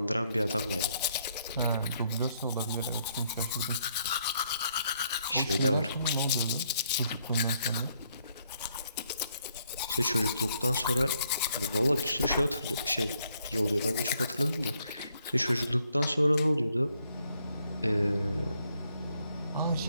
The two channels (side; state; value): both; inverted; correlation -0.72